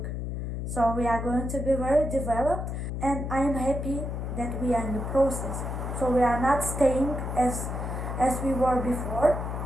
So we are going to be very developed, and I am happy that we are in the process. So we are not staying as we were before,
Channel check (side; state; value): left; noise; hum, 4 dB below the sound